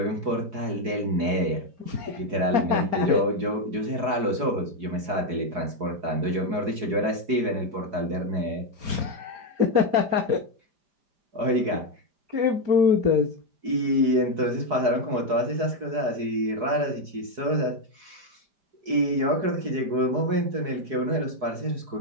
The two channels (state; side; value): late; left; 4.7 ms